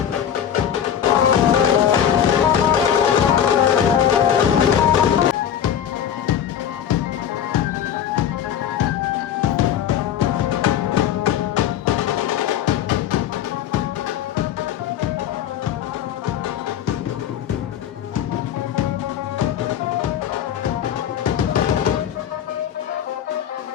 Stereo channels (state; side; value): quieter; right; 9.5 dB